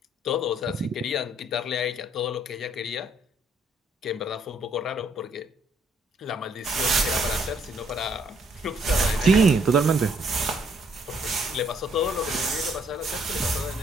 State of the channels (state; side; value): normal; both; correlation 0.67